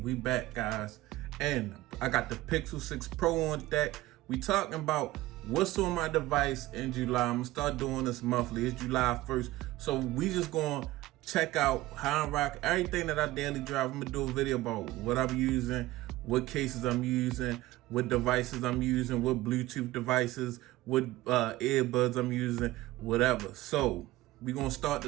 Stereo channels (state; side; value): quieter; left; 17.6 dB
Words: we back, guys. And I got the Pixel 6 Pro on deck. We talking about what's on my device in July. I'm gonna start doing this monthly. It's July 1st, so we just gonna check out how I rock everything that I daily drive. I'm gonna do a video about what I'm using, what cases I'm using, what devices I'm using, what Bluetooth devices, what earbuds I'm using, whatever. So we're gonna start